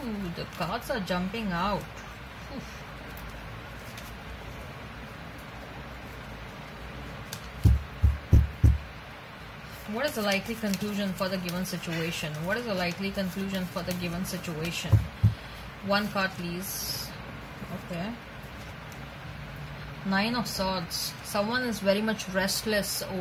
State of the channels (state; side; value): identical; both; correlation 1.00